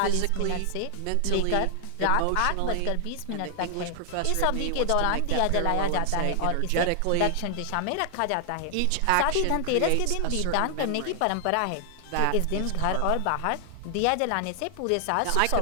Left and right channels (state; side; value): different; both; correlation 0.00